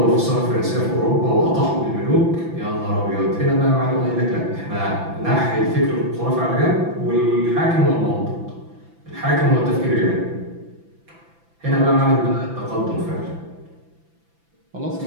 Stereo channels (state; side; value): late; left; 5.9 ms